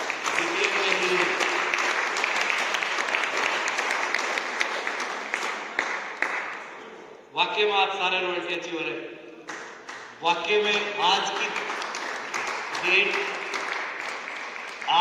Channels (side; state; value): both; identical; correlation 1.00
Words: डीटीएम में ही वाकई में आप सारे रॉयल्टी अचीवर है। वाकई में आज